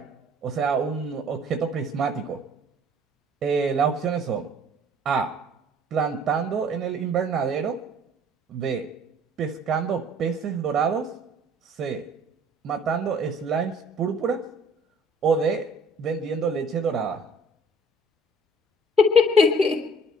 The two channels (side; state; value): both; normal; correlation 0.54